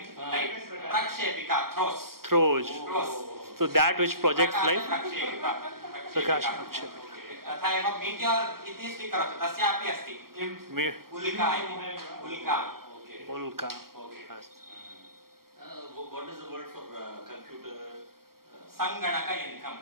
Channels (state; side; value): late; left; 0.93 ms